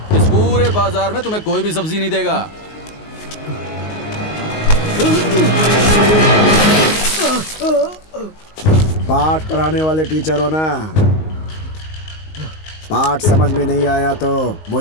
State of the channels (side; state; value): right; late; 19 ms